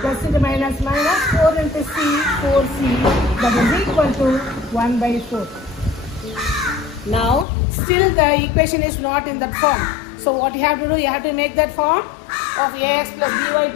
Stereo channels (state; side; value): drops out; right; at 7.5 s